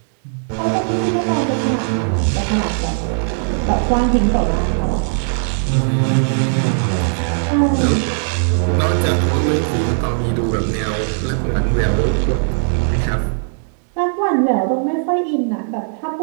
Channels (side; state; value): left; silent; digital silence